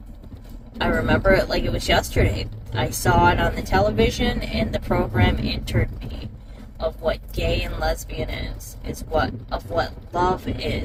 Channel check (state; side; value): identical; both; correlation 1.00